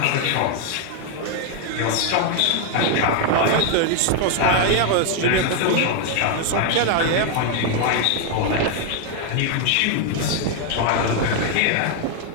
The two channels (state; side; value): different; both; correlation 0.00